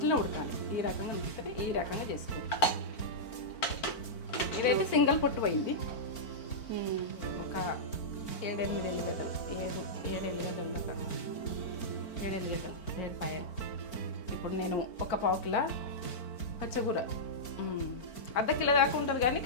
ఉడకాలి. ఈ రకంగా ఉడికితే ఈ రకంగా చేసుకోవాలి. ఇదైతే సింగిల్ పొట్టు పోయింది. ఒక 7-8 ఎల్లిగడ్డలు 7 ఎల్లిగడ్డలు 7 పాయలు. ఇప్పుడు నేను ఒక పావు కిలో పచ్చగూర, ½ కిలో దాకా ఉంటుంది కానీ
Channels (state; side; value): late; right; 4.4 ms